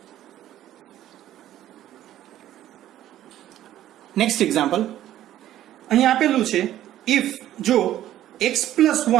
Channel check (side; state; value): left; quieter; 12.8 dB